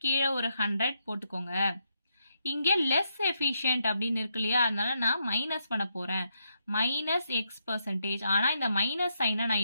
கீழே ஒரு 100 போட்டுக்கோங்க. இங்கே லெஸ் எஃபிஷியன்ட் அப்படின்னு இருக்கு இல்லையா. அதனால நான் மைனஸ் பண்ண போறேன். -X%. ஆனால் இந்த மைனஸ் சைனை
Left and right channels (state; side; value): inverted; both; correlation -0.80